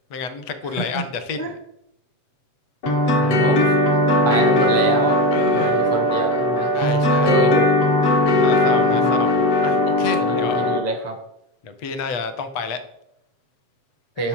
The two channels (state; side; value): late; right; 7.8 ms